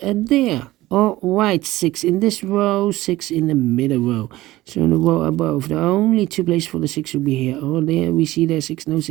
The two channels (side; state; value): left; quieter; 17.4 dB